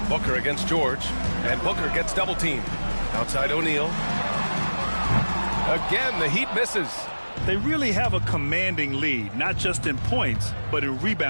Booker against George, and Booker gets double teamed. Outside O'Neal. Again, the Heat misses. They really have a commanding lead, not just in points, but in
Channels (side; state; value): both; inverted; correlation -1.00